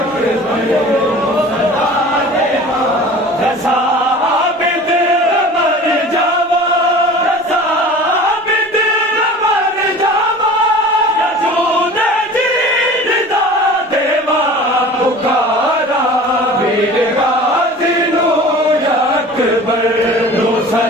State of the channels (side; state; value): both; normal; correlation 0.41